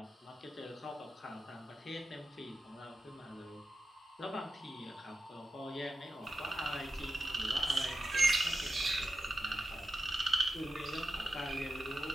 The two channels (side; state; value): both; normal; correlation 0.90